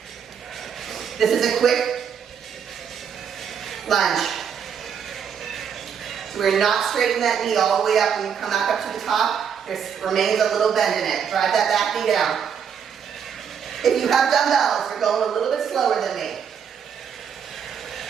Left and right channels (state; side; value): quieter; left; 7.5 dB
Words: This is a quick lunge. So we're not straightening that knee all the way up when you come back up to the top. There remains a little bend in it. Drive that back knee down. If you have dumbbells, you're going a little bit slower than me.